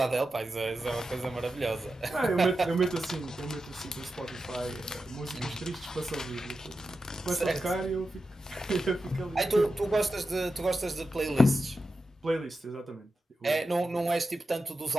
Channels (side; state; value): both; normal; correlation 0.91